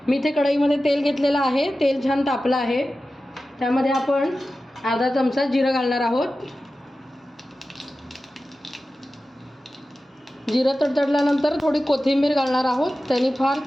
मी इथे कढईमध्ये तेल घेतलेलं आहे। तेल छान तापलं आहे। त्यामध्ये आपण अर्धा चमचा जिरं घालणार आहोत। जिरं तडतडल्यानंतर थोडी कोथिंबीर घालणार आहोत। त्याने फार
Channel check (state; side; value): normal; both; correlation 0.94